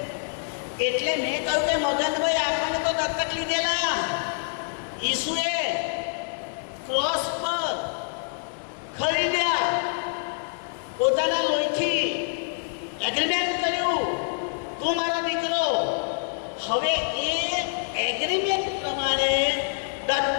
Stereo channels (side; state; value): right; silent; digital silence